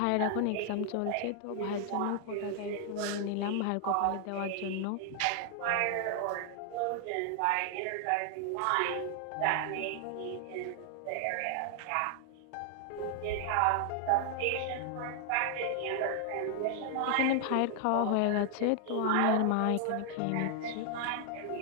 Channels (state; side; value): different; both; correlation 0.00